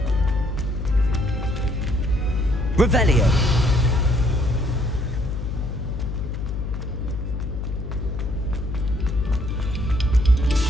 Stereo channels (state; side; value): noise; left; hum, 4 dB below the sound